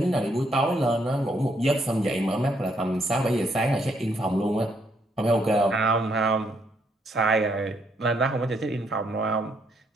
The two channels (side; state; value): both; normal; correlation 0.73